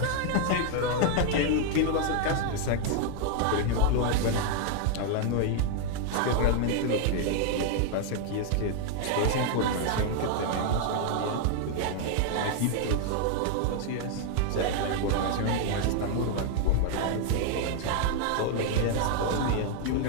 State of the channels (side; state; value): both; different; correlation 0.00